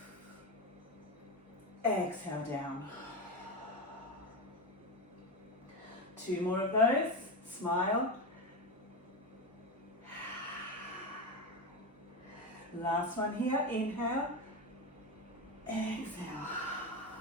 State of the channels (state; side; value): normal; both; correlation 0.16